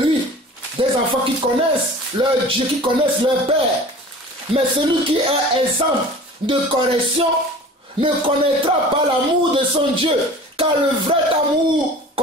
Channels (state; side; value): normal; both; correlation 0.41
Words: des enfants qui connaissent leur Dieu, qui connaissent leur Père. Mais celui qui est exempt de correction ne connaîtra pas l'amour de son Dieu, car le vrai amour